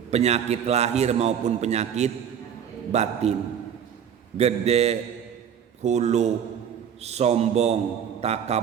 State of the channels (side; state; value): left; quieter; 8.4 dB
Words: Penyakit lahir maupun penyakit batin, gede, hulu, sombong,